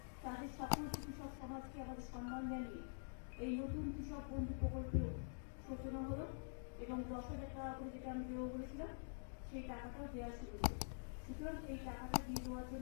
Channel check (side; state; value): right; silent; digital silence